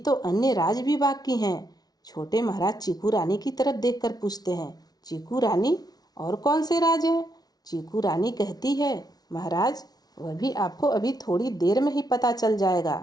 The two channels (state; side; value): late; right; 0.19 ms